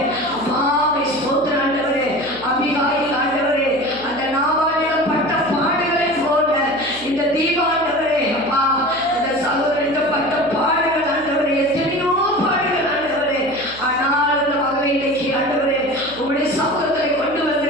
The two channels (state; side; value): noise; right; hum, 20 dB below the sound